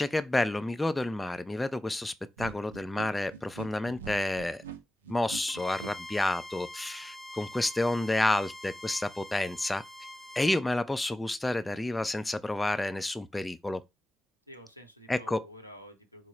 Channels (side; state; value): both; normal; correlation 0.95